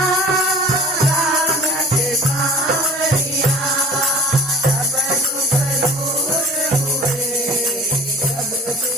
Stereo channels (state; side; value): normal; both; correlation 0.45